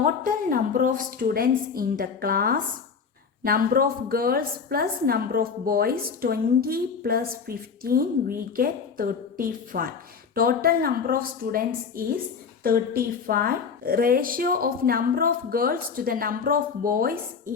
number of students in the class, number of girls plus number of boys, 20 plus 15, we get 35. Total number of students is 35. Ratio of number of girls to the number of boys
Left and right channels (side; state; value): right; quieter; 5.9 dB